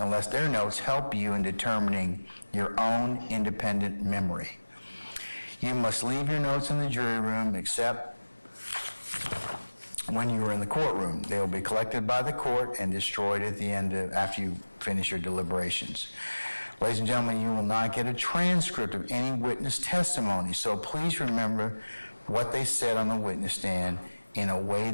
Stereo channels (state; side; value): inverted; both; correlation -1.00